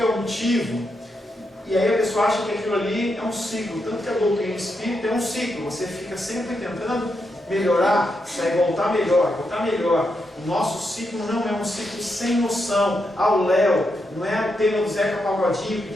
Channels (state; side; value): normal; both; correlation 0.83